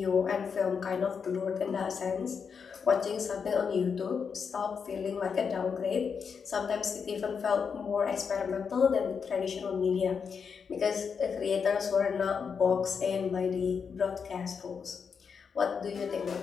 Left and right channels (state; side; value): quieter; right; 6.2 dB